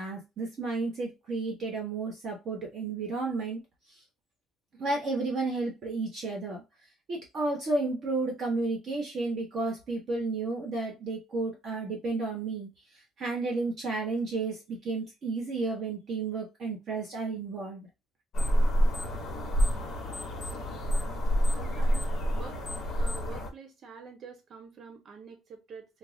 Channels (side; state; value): both; normal; correlation 0.73